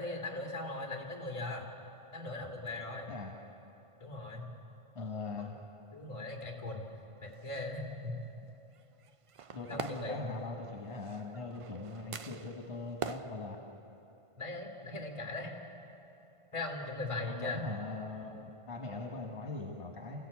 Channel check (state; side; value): late; left; 1.5 ms